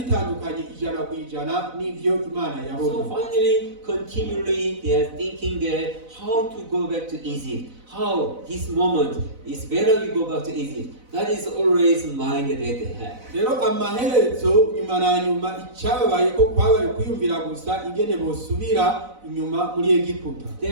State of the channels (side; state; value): left; late; 4.0 ms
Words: bitandukanye 100% n'ivyo Imana So yabona. finally, continually, they are thinking that how to go back to Egypt. How this moment is better we go back to Egypt. That is always mind that they have. Rero amaherezo nyuma na nyuma icyababaye ko kwabaye kwiyumvira gusa ingene bosubira inyuma muri Egiputa.